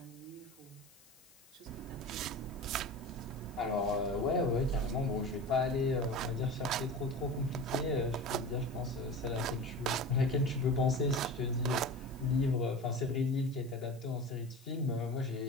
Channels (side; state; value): left; noise; hiss, 25 dB below the sound